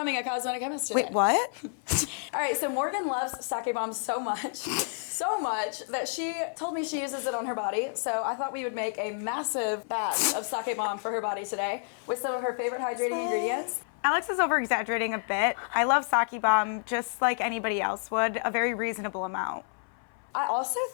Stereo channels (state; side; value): silent; right; 56 dB below the other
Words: a cosmetic chemist today. Wait, what? All right, so Morgan loves sake bomb so much that she told me she uses it on her body. So I thought we would make a massive batch of sake bomb for her body today with some of her favorite hydrating ingredients. Alex is over-exaggerating a bit. I love sake bomb just like anybody else would, a very reasonable amount. I also